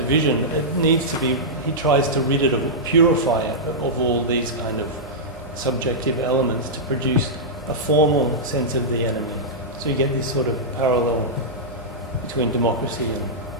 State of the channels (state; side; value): normal; both; correlation -0.11